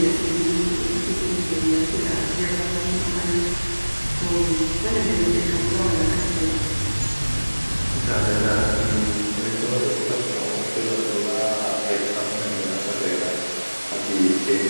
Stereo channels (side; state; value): both; inverted; correlation -1.00